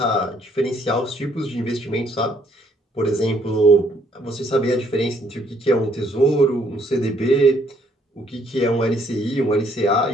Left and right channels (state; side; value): normal; both; correlation 0.67